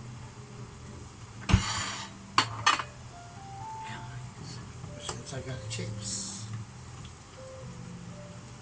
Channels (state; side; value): identical; both; correlation 1.00